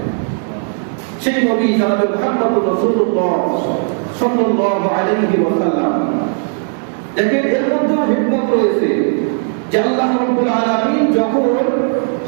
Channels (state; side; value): silent; left; 56 dB below the other